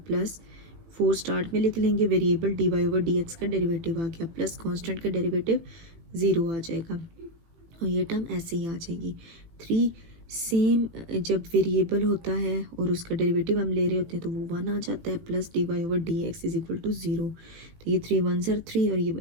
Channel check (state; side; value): late; left; 18 ms